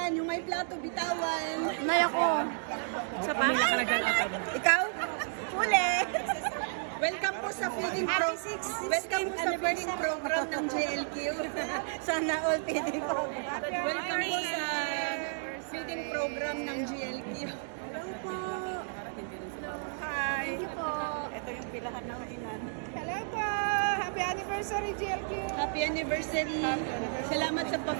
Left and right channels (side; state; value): left; silent; digital silence